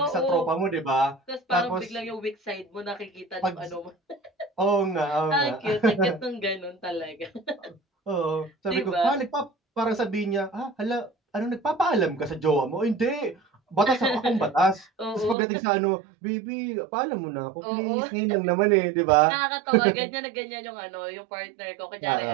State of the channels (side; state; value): left; drops out; at 15.4 s